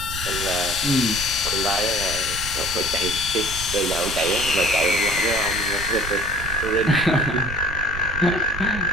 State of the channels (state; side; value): noise; right; rumble, 9 dB below the sound